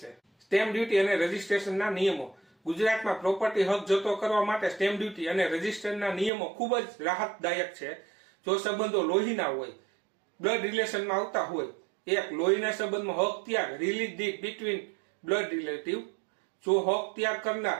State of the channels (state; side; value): drops out; left; at 6.3 s